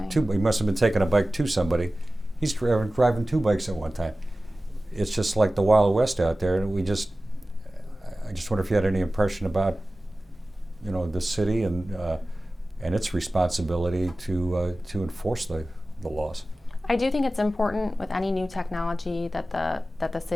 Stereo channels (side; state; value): both; normal; correlation 0.96